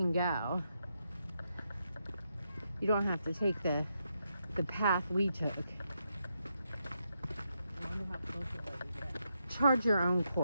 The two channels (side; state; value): both; inverted; correlation -0.82